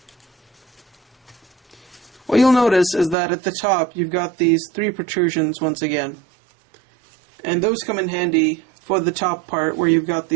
What you'll notice is that at the top you've got these 3 protrusions once again. And those come in handy for the top part where you've got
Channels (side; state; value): left; drops out; at 3.2 s